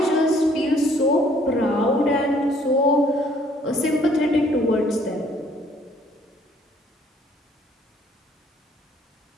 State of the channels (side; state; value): both; normal; correlation 0.61